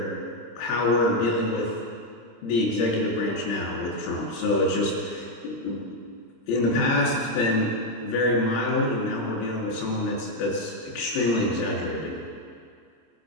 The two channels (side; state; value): right; late; 26 ms